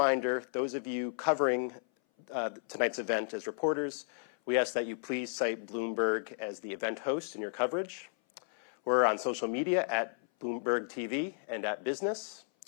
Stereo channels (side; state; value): right; silent; 56 dB below the other